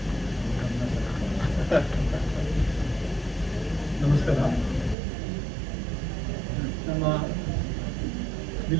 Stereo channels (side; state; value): left; drops out; at 5.0 s